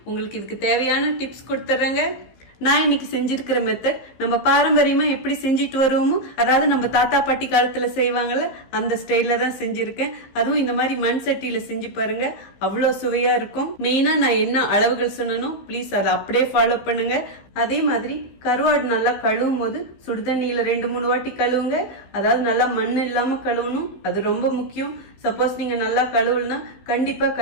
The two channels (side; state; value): right; late; 15 ms